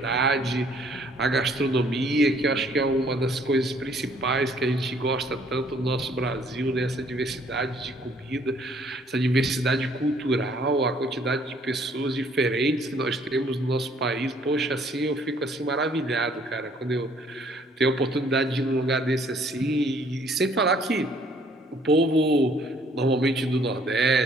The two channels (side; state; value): both; normal; correlation 0.62